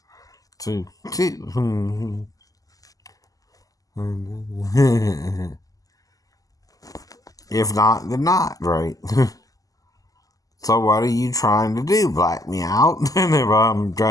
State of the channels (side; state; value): right; late; 0.17 ms